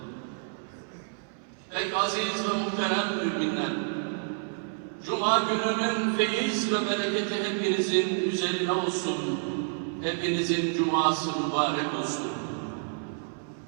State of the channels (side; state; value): left; silent; 59 dB below the other